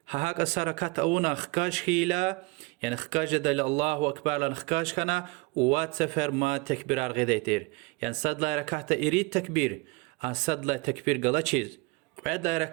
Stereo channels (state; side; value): quieter; left; 25.4 dB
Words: هاك السركات أونا خكاش خيلا يعني خكاش دل الله أكبر لن خكاش كنا وات سفر ما تكبير الغديتير يعني صد لا ركعت إريد تكبير صد لا تكبير قلا چيز بعد لا